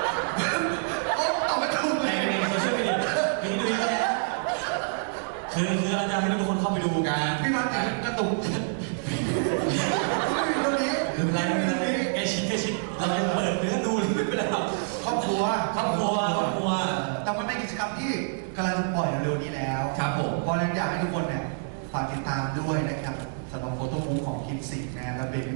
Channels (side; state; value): left; silent; digital silence